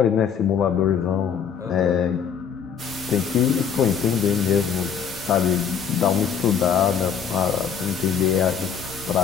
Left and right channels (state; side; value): quieter; right; 7.4 dB